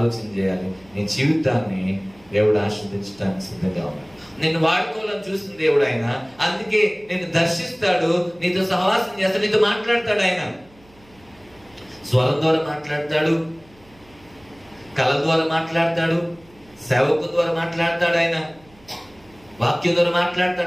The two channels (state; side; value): noise; right; hum, 28 dB below the sound